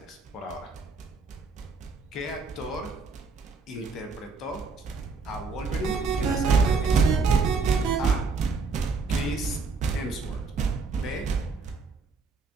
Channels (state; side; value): quieter; left; 4.4 dB